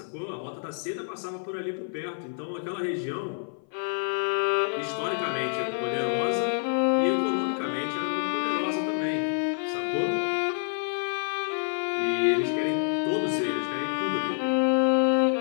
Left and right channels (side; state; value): right; silent; 56 dB below the other